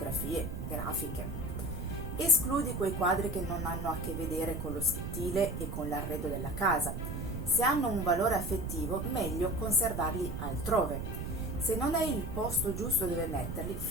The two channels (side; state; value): right; noise; rumble, 5 dB below the sound